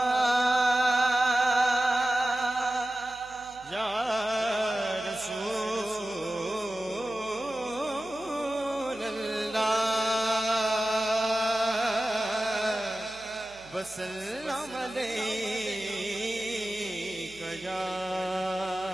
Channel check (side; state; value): right; noise; hum, 24 dB below the sound